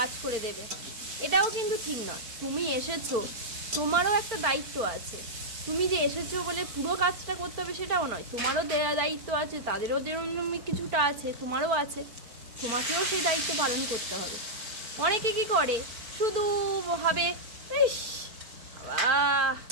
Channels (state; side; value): late; left; 4.4 ms